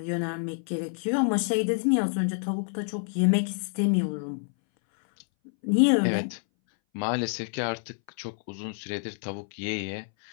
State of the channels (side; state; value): right; silent; 60 dB below the other